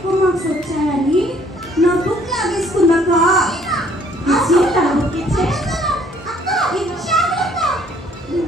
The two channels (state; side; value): normal; both; correlation 0.62